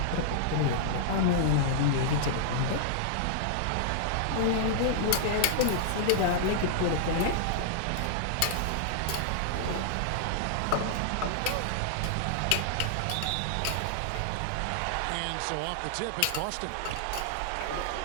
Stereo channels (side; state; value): both; different; correlation -0.01